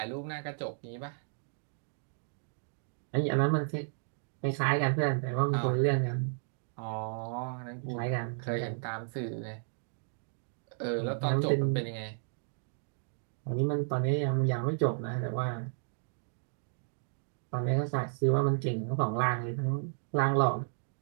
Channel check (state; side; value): silent; left; digital silence